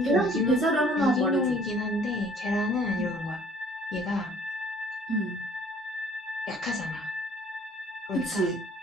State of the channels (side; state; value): both; normal; correlation 0.56